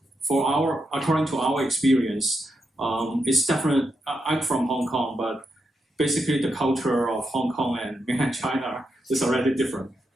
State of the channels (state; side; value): normal; both; correlation 0.84